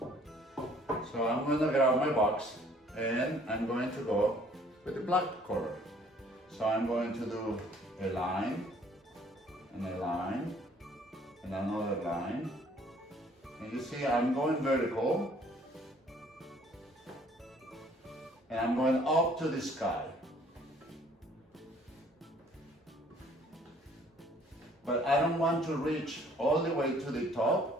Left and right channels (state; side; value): normal; both; correlation 0.58